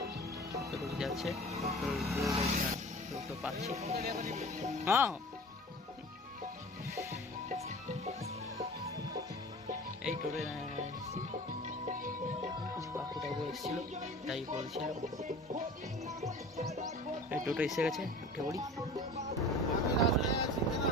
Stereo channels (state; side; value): normal; both; correlation 0.40